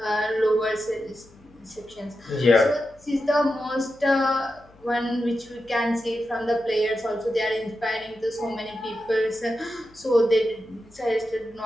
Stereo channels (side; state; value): left; noise; hum, 28 dB below the sound